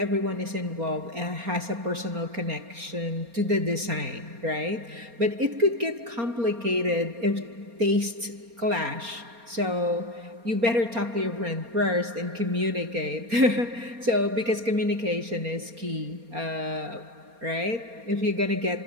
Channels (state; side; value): late; left; 4.3 ms